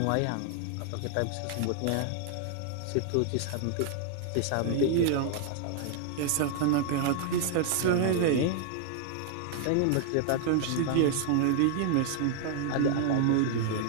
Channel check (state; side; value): different; both; correlation 0.00